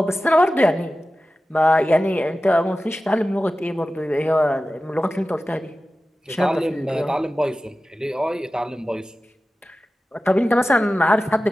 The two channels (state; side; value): normal; both; correlation 0.95